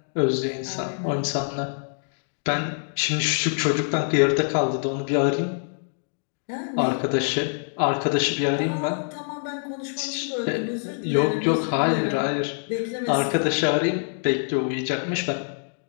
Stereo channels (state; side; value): silent; right; digital silence